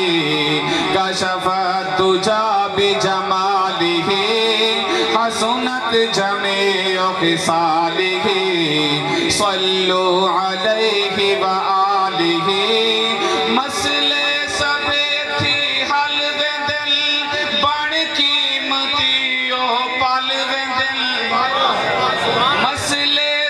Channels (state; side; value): identical; both; correlation 1.00